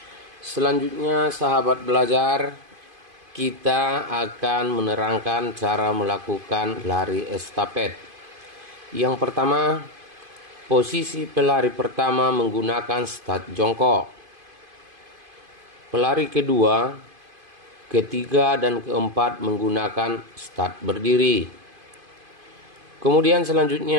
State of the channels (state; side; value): late; left; 2.5 ms